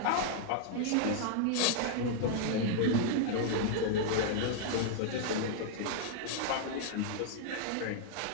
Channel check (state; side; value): different; both; correlation -0.01